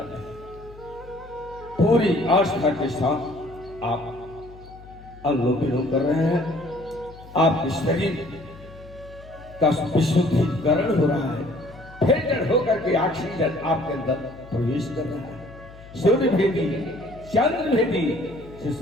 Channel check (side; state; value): left; noise; hum, 19 dB below the sound